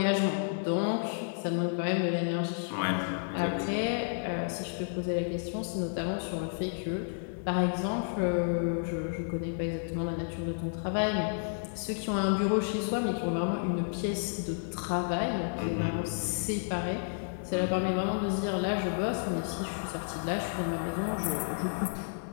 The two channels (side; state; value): right; silent; digital silence